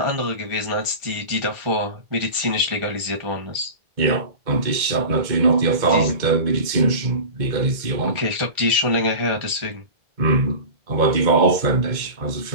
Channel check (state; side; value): late; left; 2.1 ms